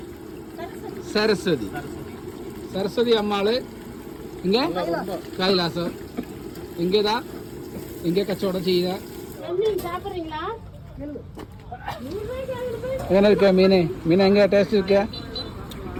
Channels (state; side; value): identical; both; correlation 1.00